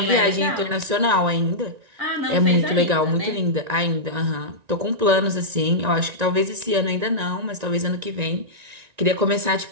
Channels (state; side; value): late; left; 1.9 ms